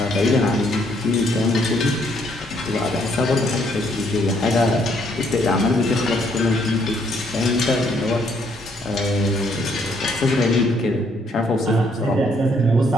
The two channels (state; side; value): normal; both; correlation 0.69